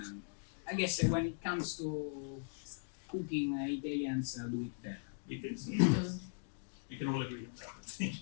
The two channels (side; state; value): right; silent; digital silence